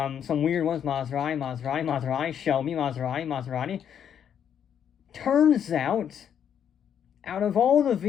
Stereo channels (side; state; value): right; quieter; 8.7 dB